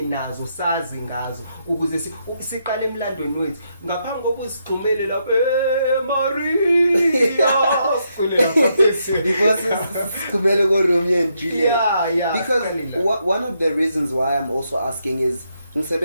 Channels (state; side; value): inverted; both; correlation -0.79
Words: nazo sazi ngazo ukuze siqale emlandweni wethu ngaphambi kokusigxumele lapha Maria sicule lapha because sigxumele ko Romeo and Juliet. Yeah, because one of the reasons why I'm also asking is